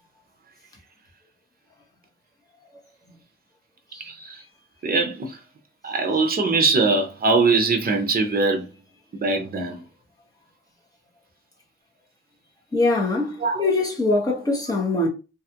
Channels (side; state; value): both; normal; correlation 0.28